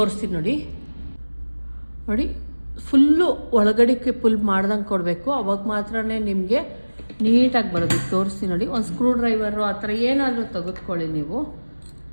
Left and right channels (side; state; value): both; inverted; correlation -1.00